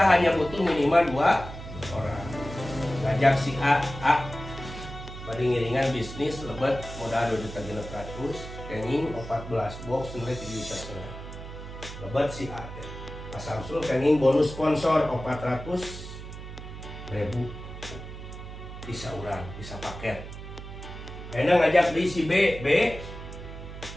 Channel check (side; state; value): right; noise; hum, 11 dB below the sound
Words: hanya butuh minimal 2 orang. Ngajak si A bari ngiringan bisnis lebat modal 2.600.000 kenging 14 box nilai 3,5 juta. Lebat si A Pak Samsul kenging bonus sponsor 400.000 bisa urang, bisa paket. Enak ngajak di si B